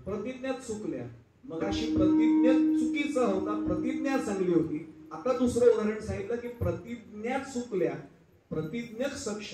प्रतिज्ञात चुकल्या. मग अशी प्रतिज्ञा चुकीचा होता, प्रतिज्ञा चांगली होती. आता दुसरं उदाहरण सांगितलं की प्रतिज्ञा चुकल्या, प्रतिज्ञक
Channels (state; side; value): identical; both; correlation 1.00